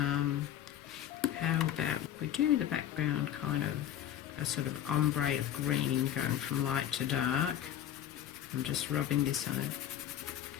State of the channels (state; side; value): quieter; right; 10.9 dB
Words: about if we do the background kind of a sort of ombre of green going from light to dark. I'm just rubbing this on it.